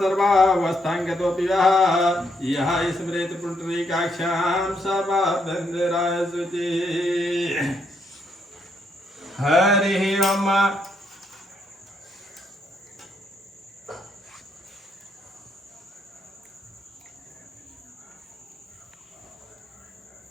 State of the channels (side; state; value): both; normal; correlation 0.75